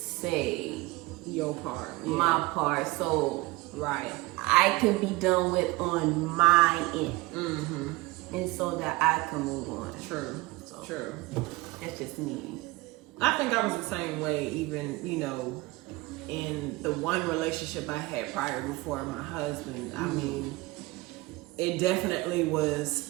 your part. My part. So right. I can be done with on my end. And so that I can move on. True. So true. That's just me. I think I was the same way, even, in the one relationship I had prior before my husband, I mean, it definitely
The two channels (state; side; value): quieter; left; 21.6 dB